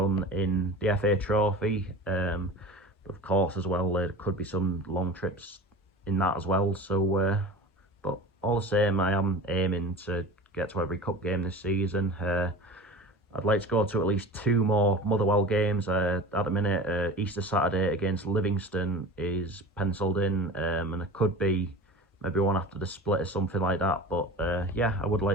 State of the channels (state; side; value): normal; both; correlation 0.36